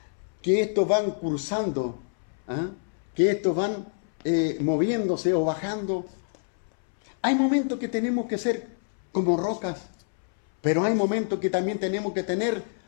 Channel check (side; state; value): right; silent; 61 dB below the other